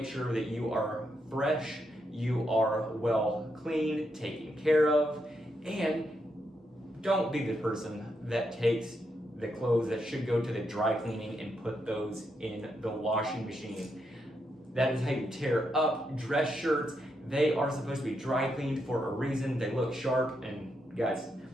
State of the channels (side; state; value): both; normal; correlation 0.81